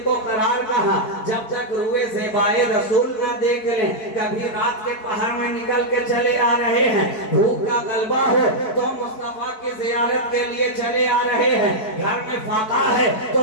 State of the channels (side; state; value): right; late; 4.6 ms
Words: को करार कहा। जब तक रुए ज़ेबाए रसूल न देख लें, कभी रात के पहर में निकल के चले आ रहे हैं, भूख का गलबा हो तो मुस्तफा की जियारत के लिए चले आ रहे हैं, घर में फाका है